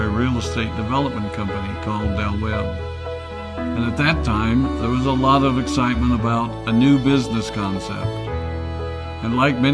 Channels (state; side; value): identical; both; correlation 1.00